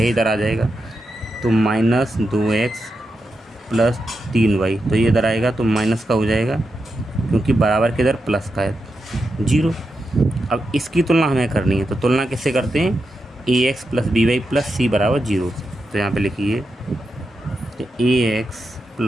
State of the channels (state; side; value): normal; both; correlation 0.87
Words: इधर आ जाएगा, तो -2x + 3y, तो ये इधर आएगा तो माइनस का हो जाएगा क्योंकि बराबर के इधर प्लस का है 0। अब इसकी तुलना हमें करनी है, तो तुलना किससे करते हैं, ax + by + c बराबर 0। तो यहाँ पे लिखिए तो ax